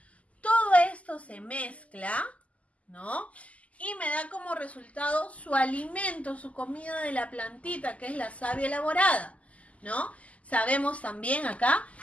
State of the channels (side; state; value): right; late; 0.068 ms